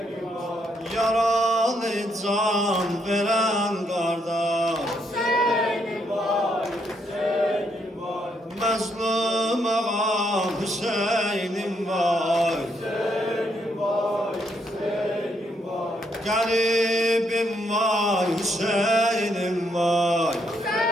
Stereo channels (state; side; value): normal; both; correlation 0.75